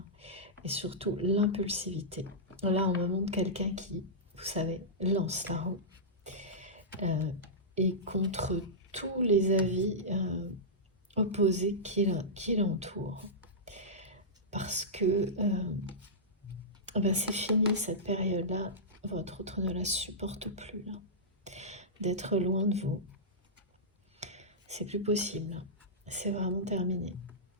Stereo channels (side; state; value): both; normal; correlation -0.14